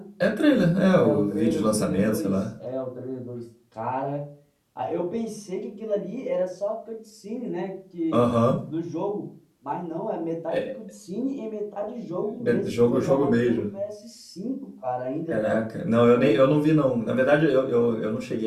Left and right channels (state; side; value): identical; both; correlation 1.00